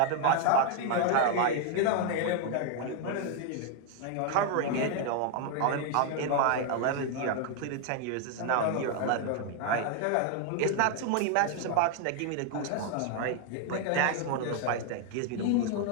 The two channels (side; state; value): both; different; correlation 0.00